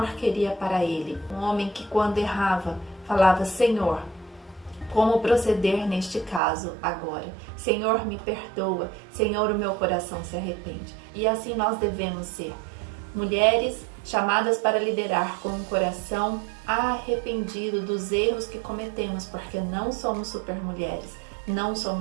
queria para ele. Um homem que, quando errava, falava: Senhor, como proceder neste caso agora? Senhor, me perdoa. Senhor, o meu coração se arrepende. E assim nós devemos ser. Mulheres chamadas para liderar com um coração arrependido dos erros que cometemos, porque não somos supermulheres, não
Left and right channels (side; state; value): left; drops out; at 6.4 s